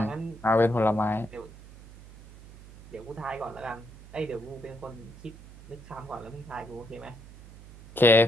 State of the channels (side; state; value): right; noise; hum, 19 dB below the sound